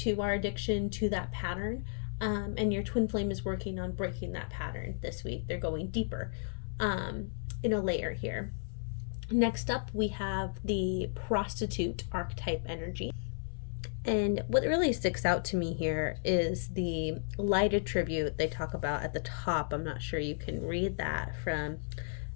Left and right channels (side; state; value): right; silent; 55 dB below the other